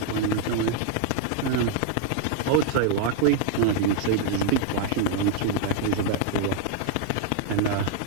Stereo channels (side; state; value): both; different; correlation 0.00